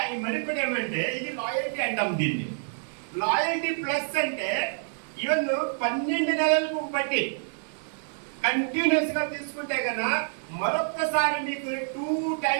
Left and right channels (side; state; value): left; silent; digital silence